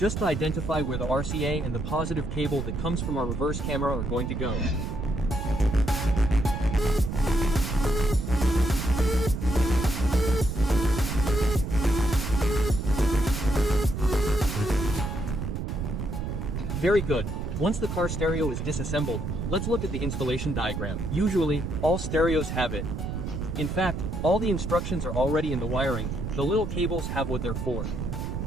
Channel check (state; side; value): noise; right; rumble, 4 dB below the sound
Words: to identify where the RCA and the positive cable that comes from our reverse camera are going to go. Very good. Once the car stereo is disassembled, let's look at the installation diagram. Usually, all stereos have it. In fact, all the instructions are already in the wiring, the little cables have what they're for.